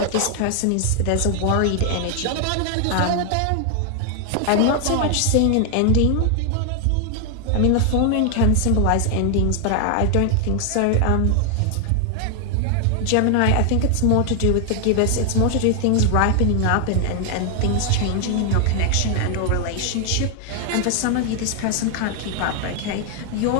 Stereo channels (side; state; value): both; different; correlation 0.00